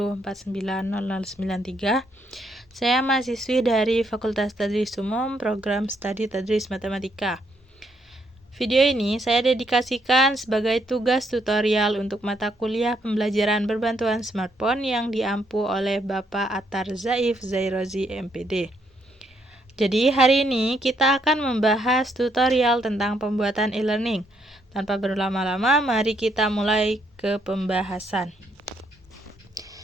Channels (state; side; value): normal; both; correlation 0.74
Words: Saya mahasiswi dari Fakultas Tadris Umum, Program Studi Tadris Matematika. Video ini saya dedikasikan sebagai tugas tutorial untuk mata kuliah pembelajaran berbantuan smartphone yang diampu oleh Bapak Attar Zaif Zairozi, MPD. Jadi hari ini kita akan membahas tutorial tentang pembuatan e-learning. Tanpa berlama-lama, mari kita mulai ke pembahasan.